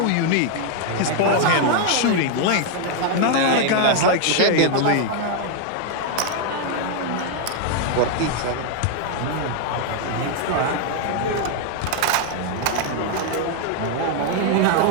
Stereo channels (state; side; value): different; both; correlation 0.00